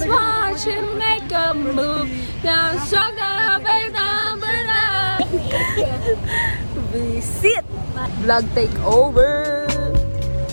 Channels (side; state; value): both; inverted; correlation -1.00